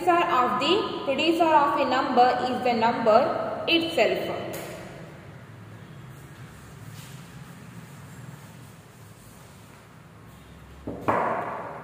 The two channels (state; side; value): identical; both; correlation 1.00